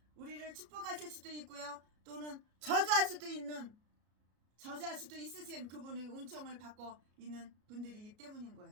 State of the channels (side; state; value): left; late; 33 ms